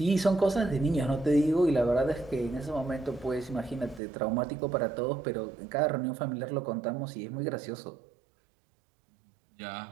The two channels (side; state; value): left; drops out; at 4.0 s